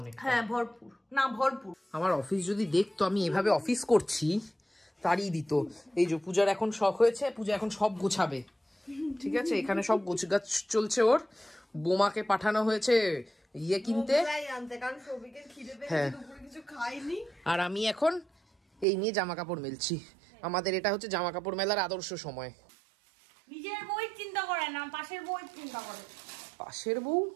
অনেক। হ্যাঁ ভরপুর, না ভরপুর। আমার অফিস যদি দেখতো আমি এভাবে অফিস করছি, তাড়িয়ে দিত। এই যে পূজার এখন শখ হয়েছে, পূজা এখন সব গোছাবে, ঠিক আছে? এখানে সব গোছগাছ চলছে ওর। বোমাকে পাঠানো হয়েছে ইয়ে কিনতে, হ্যাঁ। আর আমি এখন এই নিয়ে জামা কাপড় মেলছি। আমাদের এটা হচ্ছে জামা কাপড় মেলার আদর্শ সময়। নিজের বই চিন্তা করে না, পাশের বই চিন্তা করে। পাশের বউ,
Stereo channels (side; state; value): left; drops out; at 18.9 s